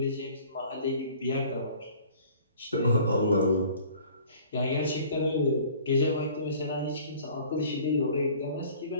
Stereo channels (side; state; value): both; inverted; correlation -0.50